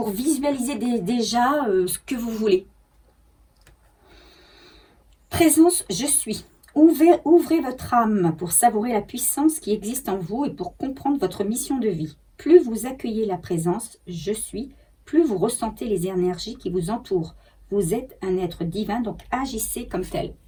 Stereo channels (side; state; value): both; identical; correlation 1.00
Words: visualiser déjà ce que vous voulez. Présence, je suis. Ouvrez votre âme pour savourer la puissance qui existe en vous et pour comprendre votre mission de vie. Plus vous accueillez la présence « Je suis », plus vous ressentez les énergies qui vous entourent. Vous êtes un être divin, donc agissez comme tel.